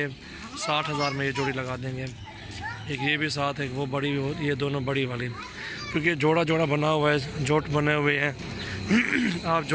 60,000 में ये जोड़ी लगा देंगे। एक ये भी साथ है, एक वो बड़ी, ये दोनों बड़ी वाली, क्योंकि जोड़ा जोड़ा बना हुआ है, जोट बने हुए हैं। आप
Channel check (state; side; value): identical; both; correlation 1.00